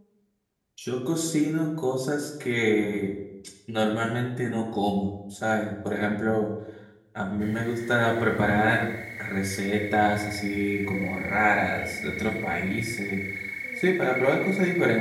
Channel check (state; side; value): identical; both; correlation 1.00